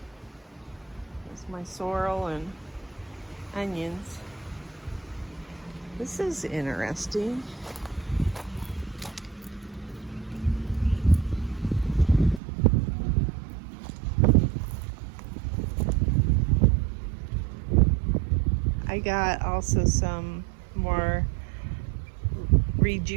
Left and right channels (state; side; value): drops out; left; at 12.4 s